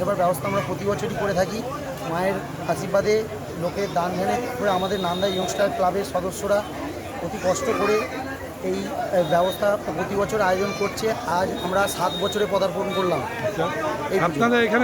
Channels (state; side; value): identical; both; correlation 1.00